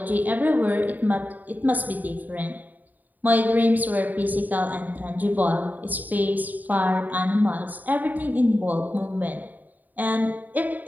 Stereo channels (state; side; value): late; left; 0.083 ms